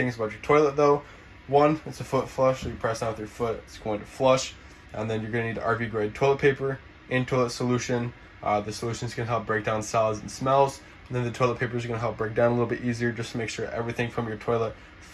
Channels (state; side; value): identical; both; correlation 1.00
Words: about your toilet though. 1, it's a foot flush, so you press down with your foot, it's going to flush. And then you're going to need RV grade toilet paper and toilet solution. The solutions can help break down solids and smells. And then the toilet paper is going to help break down a little bit easier just to make sure everything from your toilet